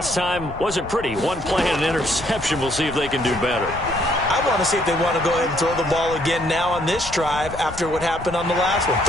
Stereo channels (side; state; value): left; noise; rumble, 13 dB below the sound